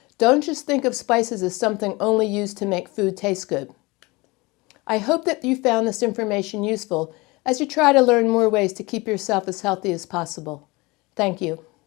Don't just think of spices as something only used to make food taste good. I hope that you found this information useful as you try to learn more ways to keep yourself as healthy as possible. Thank you.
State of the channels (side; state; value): right; quieter; 24.0 dB